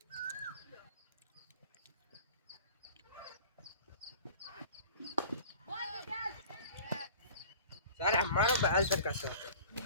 సార్ ఎంఆర్ఓ బ్యాల్ సార్ కదా సార్.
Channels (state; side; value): inverted; both; correlation -0.43